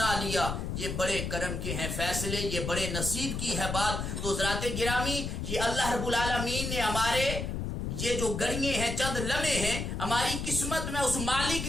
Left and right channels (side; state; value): left; noise; rumble, 3 dB below the sound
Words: لیا. یہ بڑے کرم کے ہیں فیصلے، یہ بڑے نصیب کی ہے بات. تو حضرات گرامی، یہ اللہ رب العالمین نے ہمارے یہ جو گھڑیاں ہیں، چند لمحے ہیں، ہماری قسمت میں اس مالک